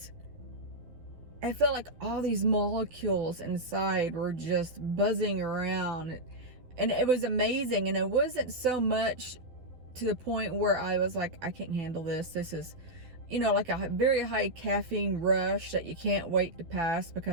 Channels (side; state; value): left; late; 12 ms